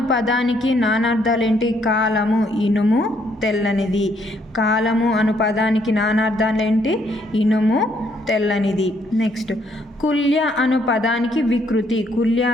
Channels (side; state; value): both; normal; correlation 0.70